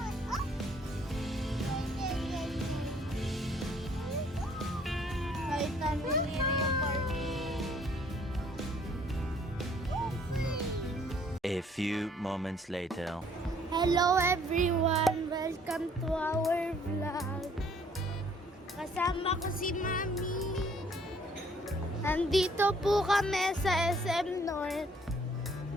Kahit namin yung party. A few moments later. Hello everyone! Welcome to our vlog. Kasama ko si Mami. Nandito po kami sa SM North.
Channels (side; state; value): both; normal; correlation 0.61